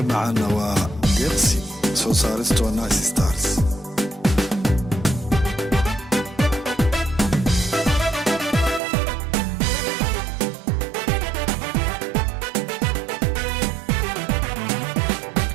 معنا وقرسي سو سارستو نايس ستارز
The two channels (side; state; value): left; drops out; at 8.8 s